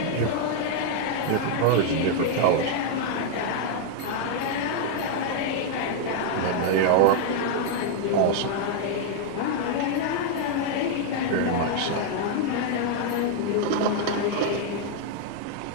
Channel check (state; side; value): different; both; correlation 0.00